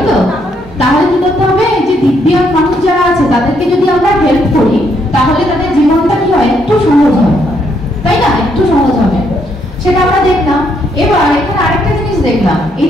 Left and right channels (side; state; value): both; normal; correlation 0.73